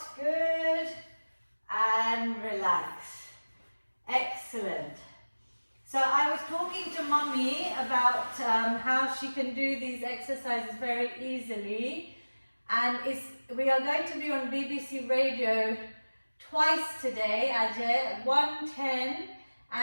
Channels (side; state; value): both; inverted; correlation -1.00